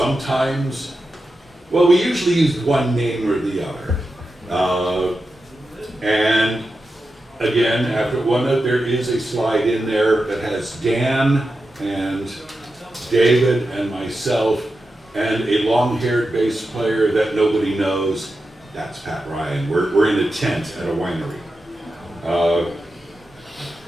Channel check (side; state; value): both; normal; correlation 0.90